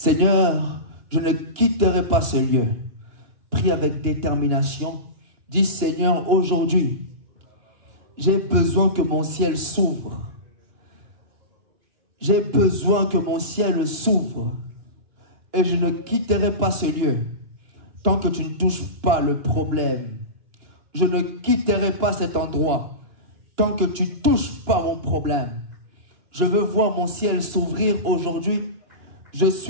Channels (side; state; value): left; late; 2.9 ms